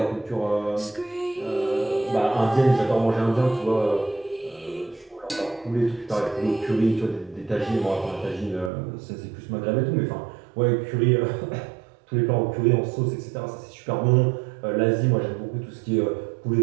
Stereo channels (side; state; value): left; drops out; at 8.7 s